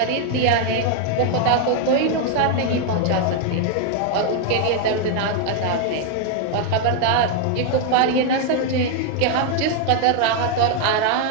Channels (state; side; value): different; both; correlation 0.00